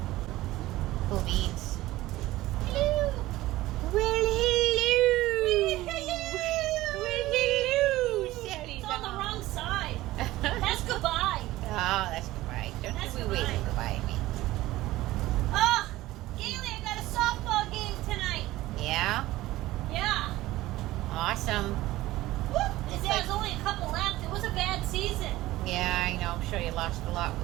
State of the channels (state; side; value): quieter; left; 17.0 dB